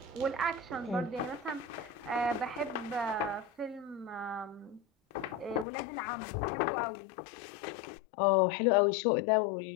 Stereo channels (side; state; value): right; drops out; at 5.7 s